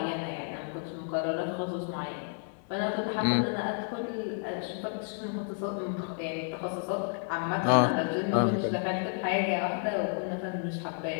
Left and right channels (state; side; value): silent; right; 57 dB below the other